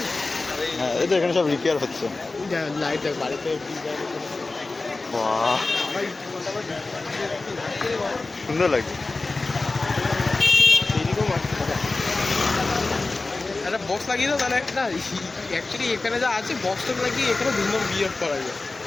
হ্যাঁ, এই তো এখানে সব রিপেয়ার হচ্ছে। লাইট দেখ বাড়িতে বাহ, সুন্দর লাগছে। একটা বক্স লাগিয়ে দাও তাহলে একটা অ্যাকচুয়ালি এখানে যা আছে বক্সটা লাগিয়ে এখানে ধুমধাম বিয়ে করা যায়।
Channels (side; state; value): right; quieter; 3.5 dB